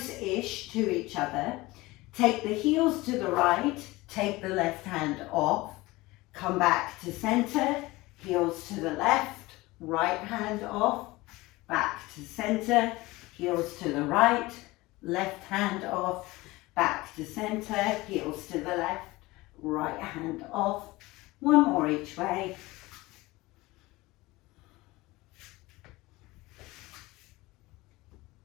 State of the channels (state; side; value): quieter; right; 20.6 dB